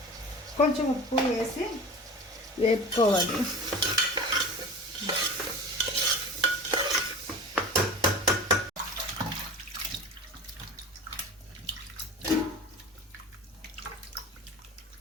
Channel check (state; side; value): normal; both; correlation 0.35